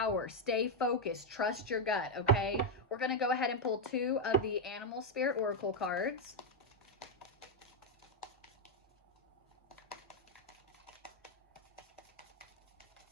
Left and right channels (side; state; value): both; normal; correlation 0.01